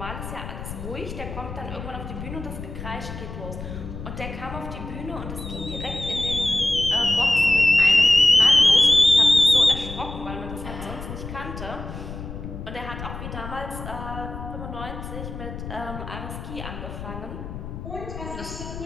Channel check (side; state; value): left; noise; rumble, 9 dB below the sound